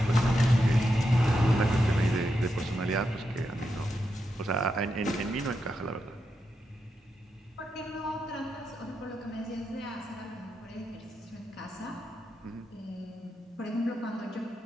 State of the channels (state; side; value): normal; both; correlation 0.85